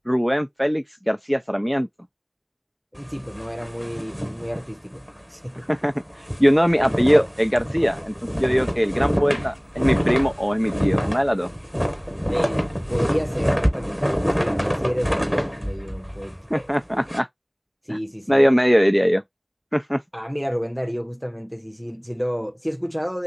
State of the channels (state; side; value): identical; both; correlation 1.00